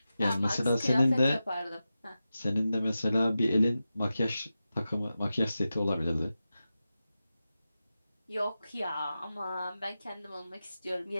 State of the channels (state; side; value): inverted; both; correlation -0.92